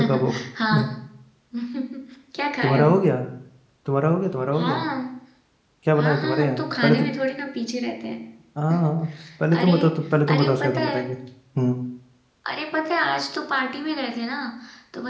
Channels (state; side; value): identical; both; correlation 1.00